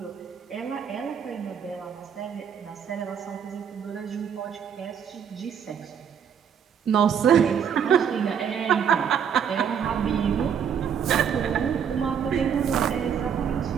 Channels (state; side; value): quieter; left; 7.8 dB